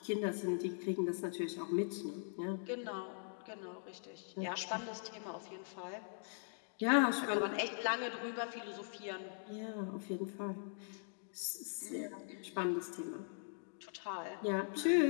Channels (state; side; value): silent; right; digital silence